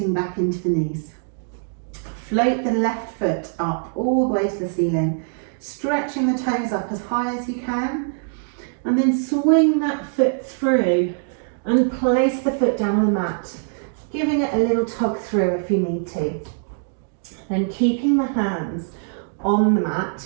back into the knees. Float the left foot up all the way to the ceiling, stretching the toes up as high as you can, and then swing that foot through and place the foot down on the mat, giving it a little tug through if you need to. Then keeping the hands on the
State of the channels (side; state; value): left; silent; digital silence